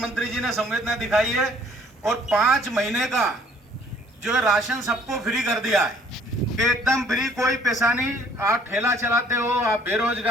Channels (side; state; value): both; normal; correlation 0.59